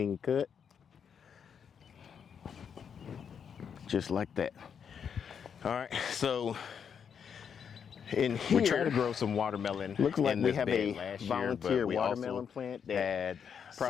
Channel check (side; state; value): right; quieter; 7.3 dB